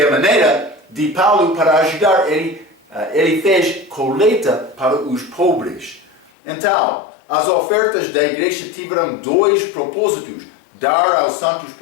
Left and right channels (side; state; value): right; drops out; at 6.3 s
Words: a maneira de Paulo para ajudar. Ele fez colheita para os pobres. Então, as ofertas da igreja tiveram 2 propósitos: dar aos santos